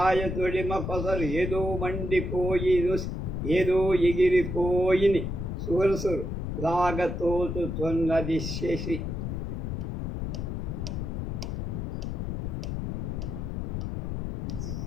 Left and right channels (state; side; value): noise; left; rumble, 3 dB below the sound